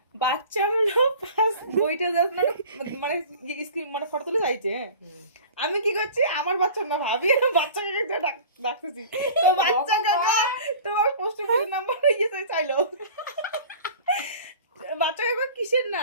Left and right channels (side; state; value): both; inverted; correlation -0.42